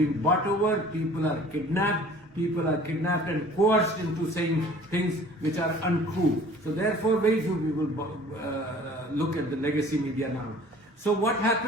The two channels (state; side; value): normal; both; correlation 0.49